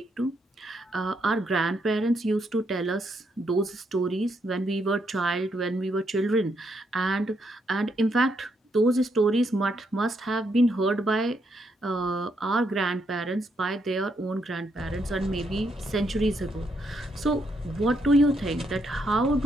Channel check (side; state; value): both; normal; correlation 0.77